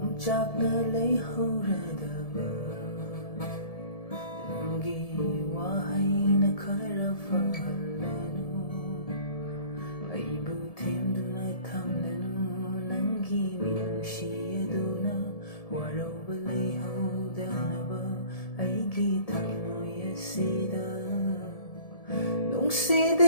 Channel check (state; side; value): late; right; 1.7 ms